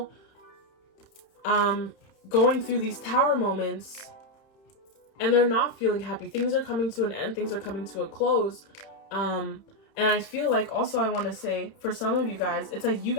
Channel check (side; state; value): right; late; 31 ms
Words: going through these tower moments, and they're not feeling happy. Things are coming to an end. Things are coming to a close. And I feel like also I want to say, for some of you guys, it's like you